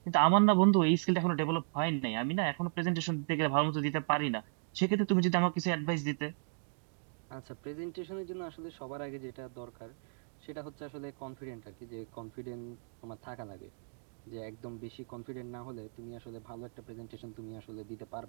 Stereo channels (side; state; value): left; silent; digital silence